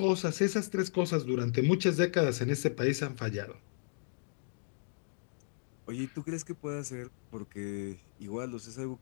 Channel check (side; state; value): right; silent; digital silence